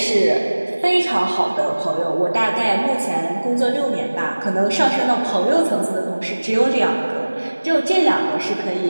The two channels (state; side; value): inverted; both; correlation -1.00